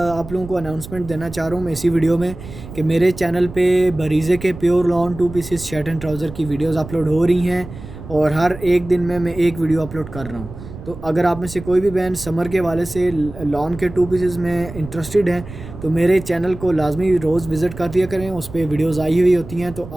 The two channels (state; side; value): noise; right; rumble, 14 dB below the sound